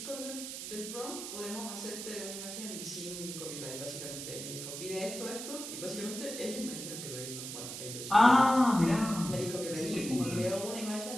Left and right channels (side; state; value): right; noise; hiss, 7 dB below the sound